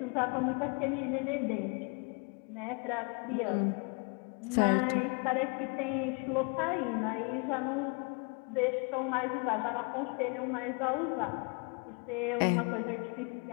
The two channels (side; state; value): right; quieter; 33.7 dB